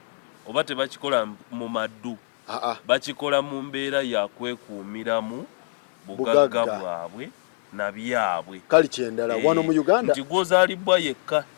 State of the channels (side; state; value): right; silent; 62 dB below the other